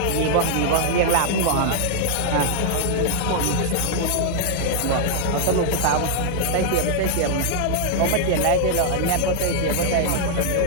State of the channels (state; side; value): different; both; correlation -0.01